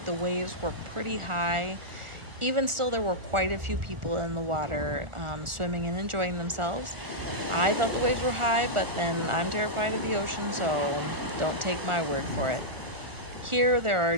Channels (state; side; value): late; left; 1.4 ms